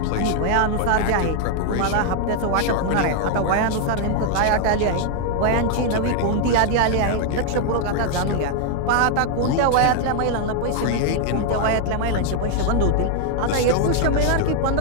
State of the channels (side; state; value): both; different; correlation 0.00